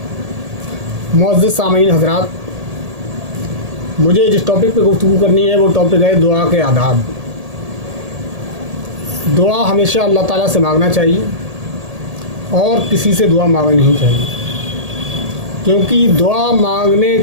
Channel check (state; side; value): late; left; 1.8 ms